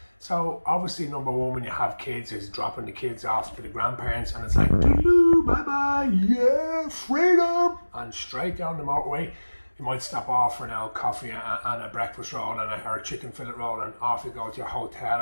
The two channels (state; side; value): inverted; both; correlation -1.00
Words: So obviously, number one, when you have kids, is dropping the kids off to the grandparents, and it's like, doo-doo, bye-bye, yeah, freedom, and straight down the motorway. You might stop off for an old coffee and a breakfast roll or a chicken fillet roll, and off you go to your hotel,